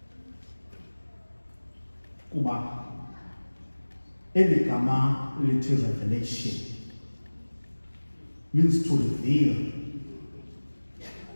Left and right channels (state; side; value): inverted; both; correlation -1.00